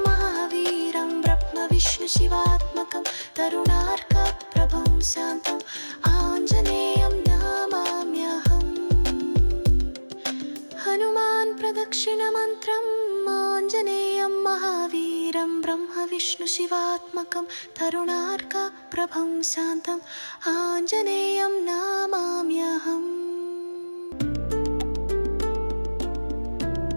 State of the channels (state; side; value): inverted; both; correlation -1.00